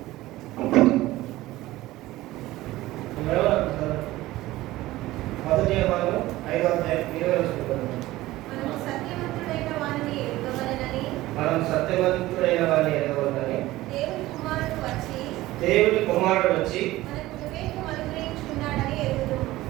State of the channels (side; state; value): left; quieter; 17.2 dB